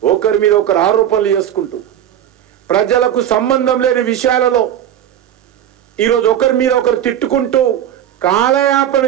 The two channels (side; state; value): left; quieter; 10.6 dB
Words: ఒకరి మీద ఒకరు ఆరోపణలు చేసుకుంటూ ప్రజలకు సంబంధం లేని విషయాలలో ఈరోజు ఒకరి మీద ఒకరు తిట్టుకుంటూ కాలయాపన